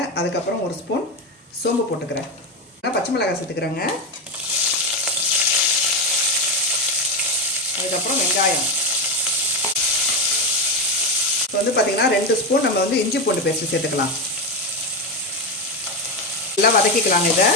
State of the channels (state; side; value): normal; both; correlation 0.13